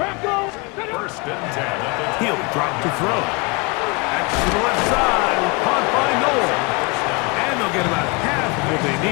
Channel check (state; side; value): quieter; right; 29.4 dB